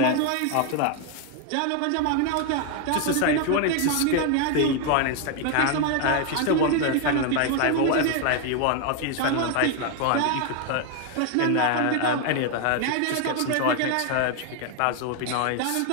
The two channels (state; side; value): different; both; correlation 0.01